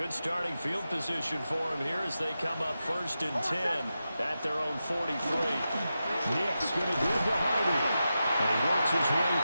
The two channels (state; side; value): inverted; both; correlation -0.90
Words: starting field position for him here as they come up 1st and 10 at their own 43. Nick's going to give to Hardy. And he works his way